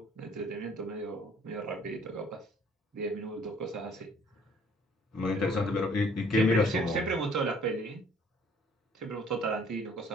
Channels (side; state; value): both; normal; correlation 0.58